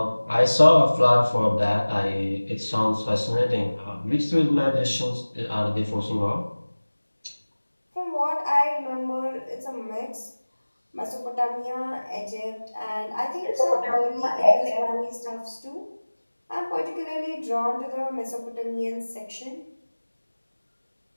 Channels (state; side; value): inverted; both; correlation -1.00